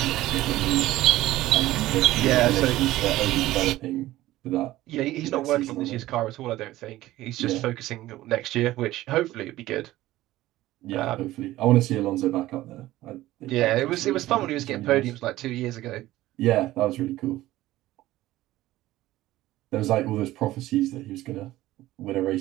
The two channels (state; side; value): quieter; left; 16.0 dB